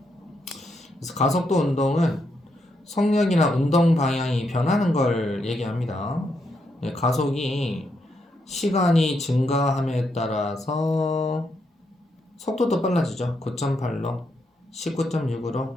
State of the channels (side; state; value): both; normal; correlation 0.80